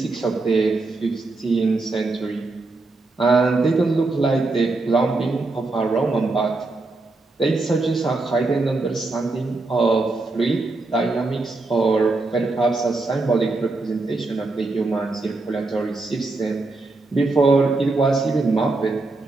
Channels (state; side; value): quieter; left; 3.4 dB